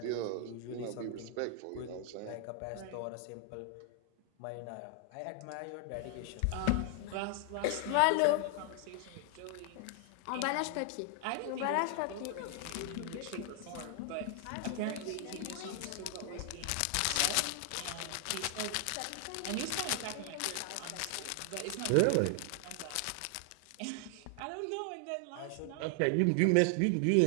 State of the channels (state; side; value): different; both; correlation 0.00